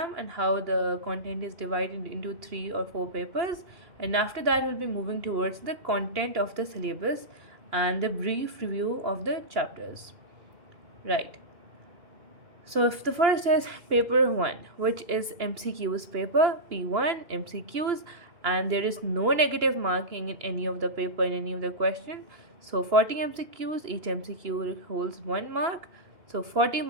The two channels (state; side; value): late; left; 2.9 ms